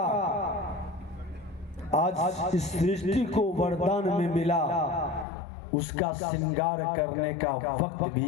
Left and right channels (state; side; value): drops out; right; at 5.2 s